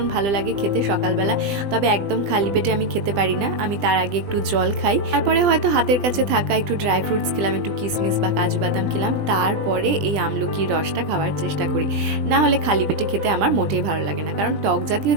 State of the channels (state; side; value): late; left; 20 ms